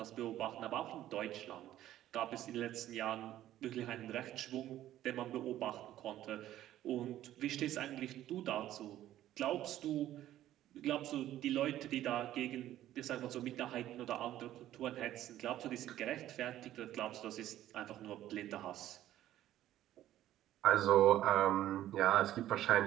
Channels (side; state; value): left; quieter; 13.2 dB